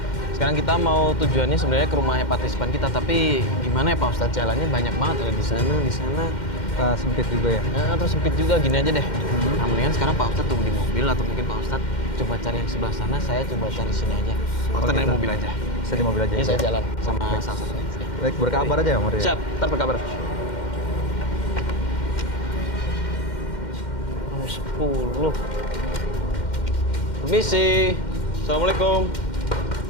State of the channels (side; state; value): right; late; 2.1 ms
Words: Sekarang kita mau tujuannya sebenarnya ke rumahnya partisipan kita, tapi gimana ya Pak Ustadz, jalannya banyak banget ada di sana. Sempit juga ya. Ya, terus sempit juga, gini aja deh. Nah, mendingan sekarang Pak Ustadz tunggu di mobil atau mungkin Pak Ustadz coba cari yang sebelah sana, saya coba cari sini aja. Pak Ustadz naik gitu. mobil aja. Bisa di mobil aja. Ini ya? saya jalan sama Baik. salah satunya. Baik, berkabar aja ya, Maria. Siap, ntar berkabar. Nomor 10. Permisi. Assalamualaikum.